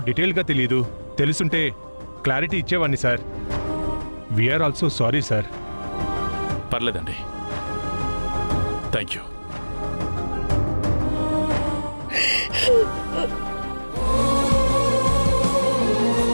డీటెయిల్గా తెలియదు. తెలుసుంటే క్లారిటీ ఇచ్చేవాడిని sir. We are also sorry sir. పర్లేదండి, థ్యాంక్ యూ.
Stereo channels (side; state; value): both; inverted; correlation -1.00